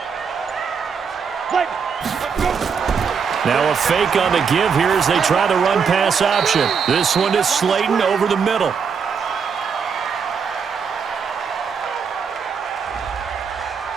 Let's go. Now a fake on the give here as they try the run-pass option. This one is Slayton over the middle.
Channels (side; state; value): left; quieter; 6.2 dB